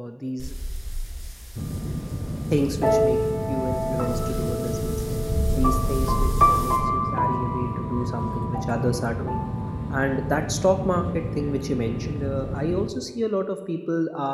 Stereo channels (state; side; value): identical; both; correlation 1.00